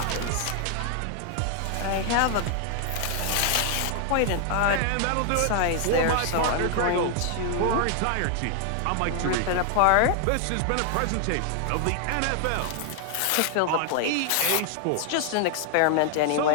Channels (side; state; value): both; different; correlation 0.00